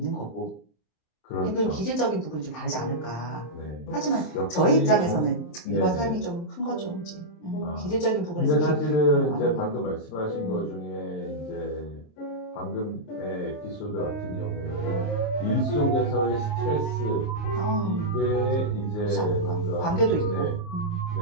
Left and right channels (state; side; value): late; right; 27 ms